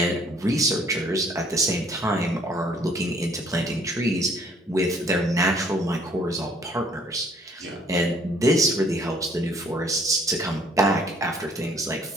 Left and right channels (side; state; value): both; normal; correlation 0.60